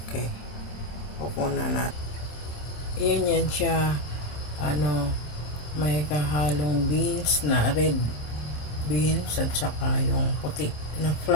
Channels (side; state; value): right; late; 27 ms